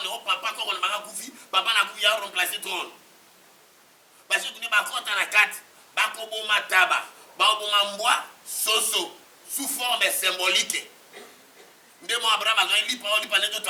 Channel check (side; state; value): both; identical; correlation 1.00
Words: oh papa, quand on m'a koufi, papa n'a koufi à remplacer trône. Parce que tu n'es pas content à la carte, Bakobo Mataba, Bakobo Mamboa, Soso, sous forme symbolique. Ndemo Abraham a dit parole par les